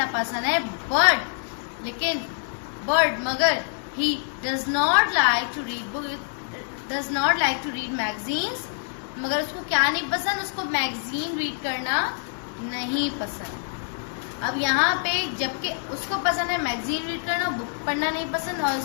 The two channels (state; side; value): silent; right; 61 dB below the other